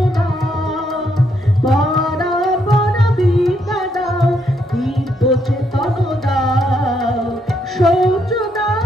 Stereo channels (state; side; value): normal; both; correlation 0.75